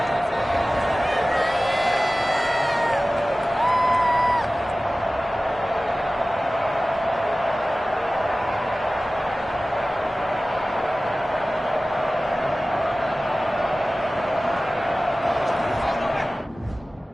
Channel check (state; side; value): normal; both; correlation 0.97